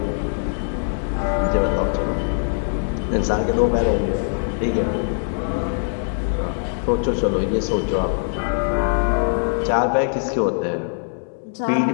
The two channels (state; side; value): silent; right; digital silence